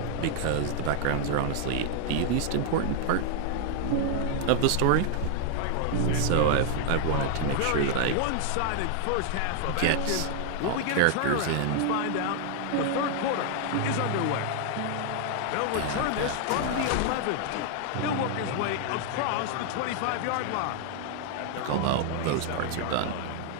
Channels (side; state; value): both; different; correlation 0.00